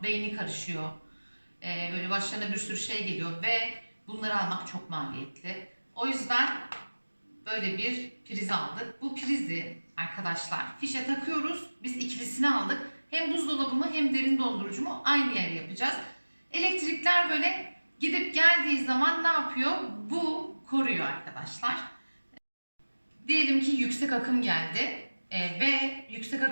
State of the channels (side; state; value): both; inverted; correlation -1.00